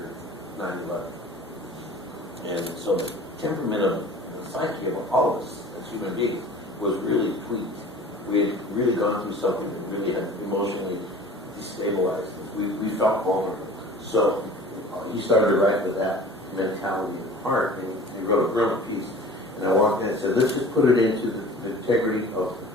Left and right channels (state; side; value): normal; both; correlation 0.44